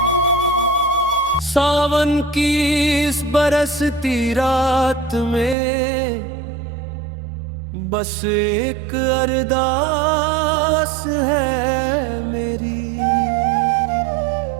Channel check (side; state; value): left; drops out; at 5.6 s